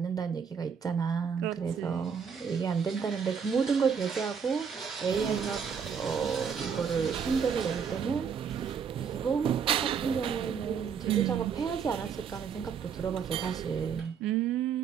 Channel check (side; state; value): left; quieter; 6.8 dB